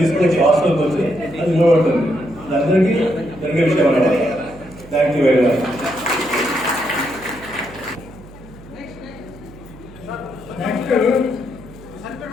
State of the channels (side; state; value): right; noise; hum, 19 dB below the sound